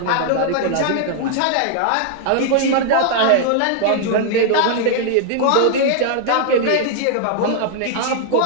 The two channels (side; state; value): both; different; correlation -0.01